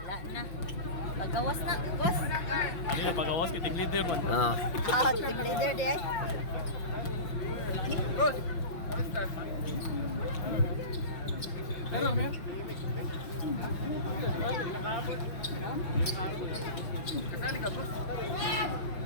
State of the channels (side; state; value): right; late; 5.8 ms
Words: na. Pagawas na, boss. Ano yung pagawas kay team leader man. Ah. Team leader di ay.